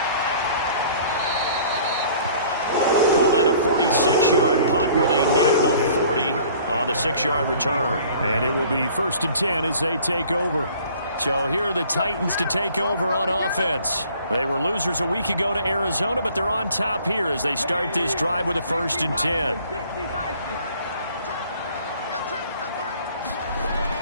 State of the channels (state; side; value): inverted; both; correlation -0.53